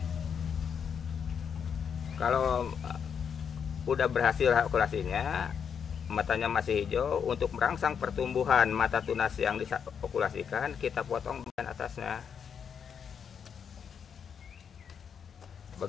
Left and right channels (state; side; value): quieter; right; 7.2 dB